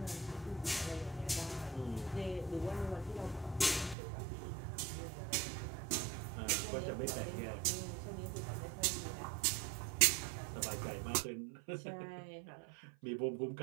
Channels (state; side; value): drops out; left; at 4.0 s